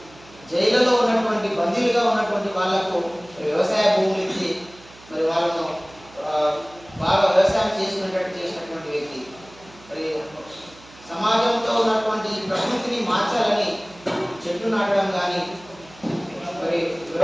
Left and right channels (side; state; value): right; noise; hum, 23 dB below the sound